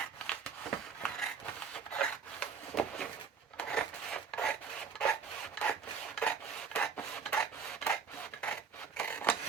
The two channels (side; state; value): left; quieter; 6.0 dB